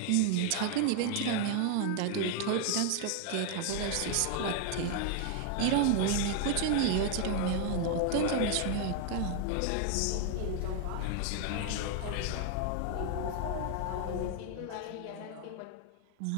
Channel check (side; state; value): both; different; correlation 0.00